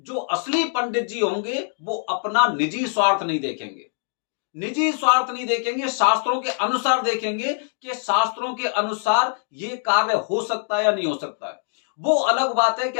असली पंडित जी होंगे, वो अपना निजी स्वार्थ नहीं देखेंगे, निजी स्वार्थ नहीं देखेंगे, शास्त्रों के अनुसार देखेंगे कि शास्त्रों के अनुसार ये कार्य हो सकता है या नहीं हो सकता है। वो अलग बात है कि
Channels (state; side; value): silent; right; 63 dB below the other